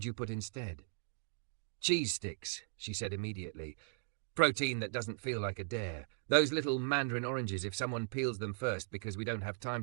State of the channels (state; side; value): silent; left; digital silence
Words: you put instead?" "Cheese sticks," she said immediately. Protein that doesn't feel like a dare. Those little mandarin oranges if someone peels them first because we don't have time